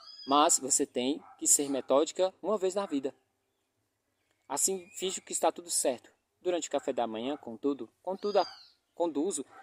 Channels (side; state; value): both; identical; correlation 1.00